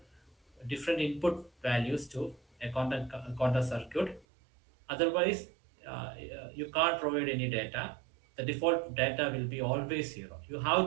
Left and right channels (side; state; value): left; drops out; at 4.2 s